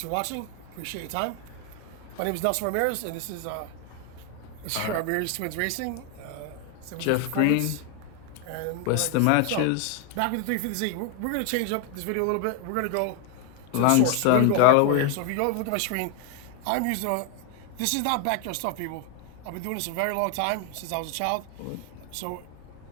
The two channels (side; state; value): both; different; correlation 0.01